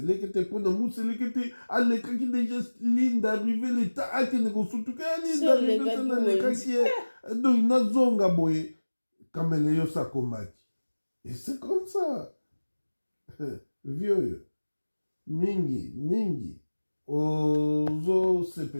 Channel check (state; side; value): inverted; both; correlation -1.00